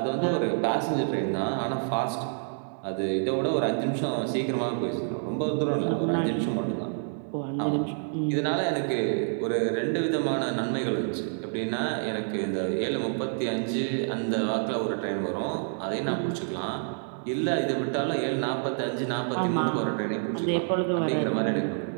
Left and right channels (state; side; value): silent; left; 59 dB below the other